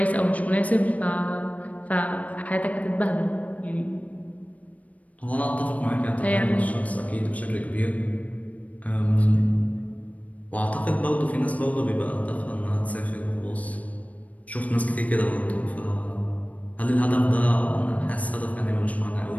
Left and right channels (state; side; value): late; right; 0.069 ms